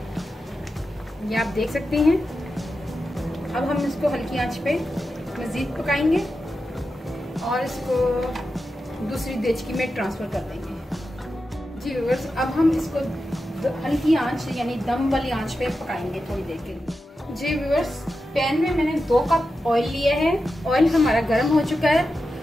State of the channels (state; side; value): normal; both; correlation 0.90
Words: ये आप देख सकते हैं। अब हम इसको हल्की आंच पे मजीद पकाएंगे और इसको दूसरी देचकी में ट्रांसफर कर देंगे। जी व्यूअर्स, अब हम इसको हल्की आंच यानी दम वाली आंच पे पकाएंगे थोड़ी देर के लिए। जी व्यूअर्स, पैन में मैंने 2 कप ऑयल लिया है। ऑयल हमारा गर्म हो चुका है।